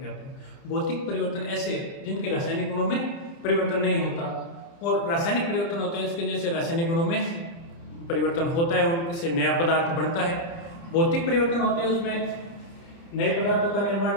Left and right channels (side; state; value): right; late; 30 ms